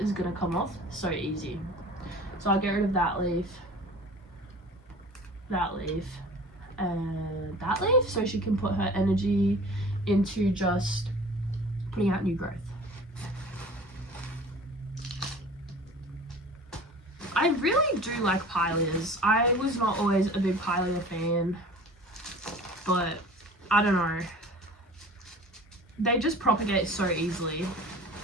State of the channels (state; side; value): normal; both; correlation 0.42